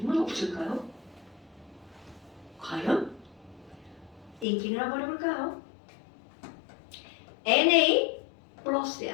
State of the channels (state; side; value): drops out; right; at 4.5 s